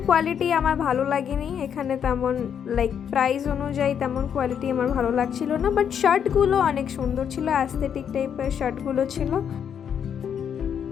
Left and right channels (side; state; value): right; quieter; 8.2 dB